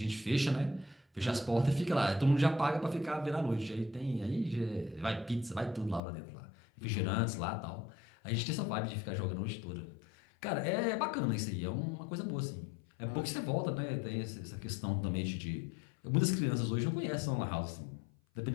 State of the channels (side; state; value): right; drops out; at 6.0 s